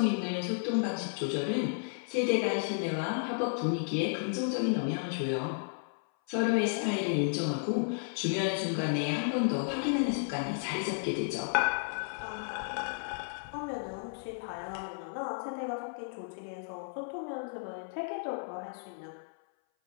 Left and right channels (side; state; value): right; silent; 56 dB below the other